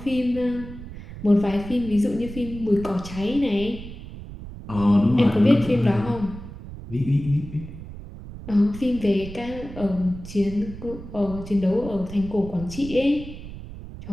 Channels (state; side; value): noise; right; rumble, 12 dB below the sound